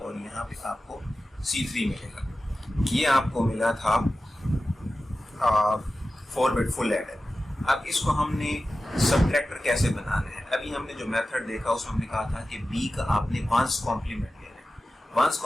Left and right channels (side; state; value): both; normal; correlation 0.94